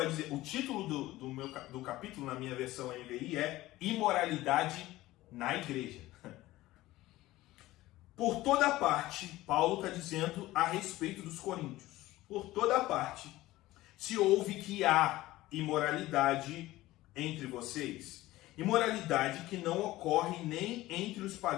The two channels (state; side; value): quieter; right; 17.1 dB